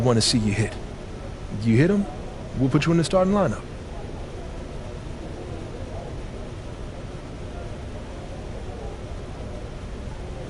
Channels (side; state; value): both; identical; correlation 1.00